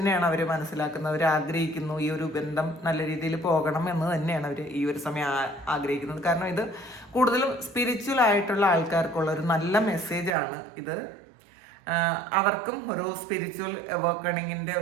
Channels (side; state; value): left; drops out; at 10.4 s